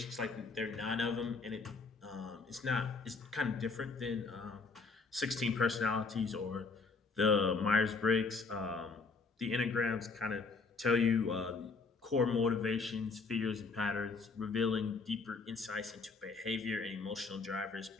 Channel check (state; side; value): quieter; right; 4.3 dB